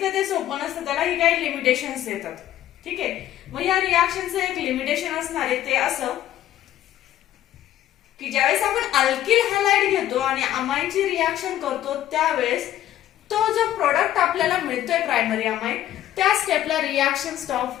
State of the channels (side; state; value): right; quieter; 12.7 dB